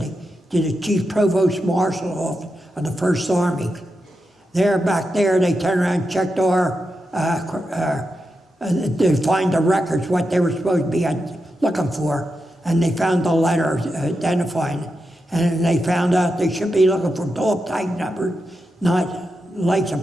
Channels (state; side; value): normal; both; correlation 0.88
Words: to the Chief Provost Marshal of the First Army. Back there, they turned around and checked our, to find the records, what they were supposed to be looking for, and they found the letter identifying it. And they found out they should be looking for dog tag numbers, not